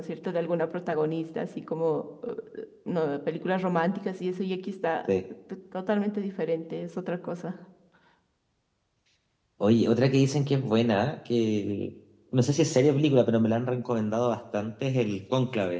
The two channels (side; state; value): both; identical; correlation 1.00